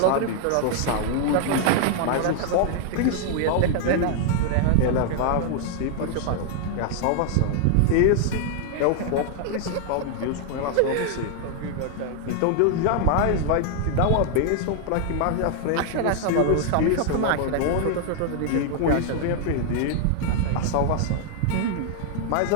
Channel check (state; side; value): different; both; correlation 0.00